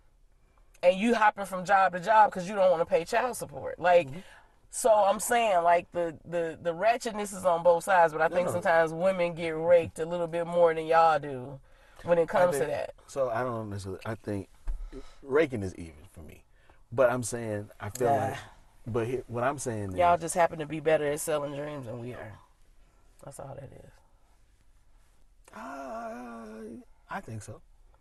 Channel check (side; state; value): both; identical; correlation 1.00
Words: and you hopping from job to job because you don't want to pay child support. Like, so I'm saying, like, the ratchetness is on both sides, but I think sometimes women get raked a little bit more than y'all do when it comes to that. So I don't necessarily. I think raking is even for me, but I'm saying I feel like. But what I'm saying y'all is, just happen to be better at selling dreams than we are. That's all that is. I think so,